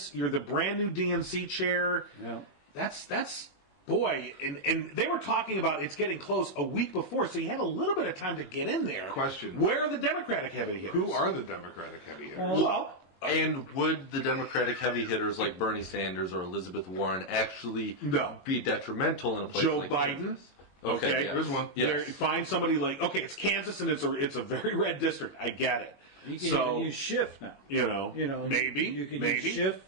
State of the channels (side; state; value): right; late; 21 ms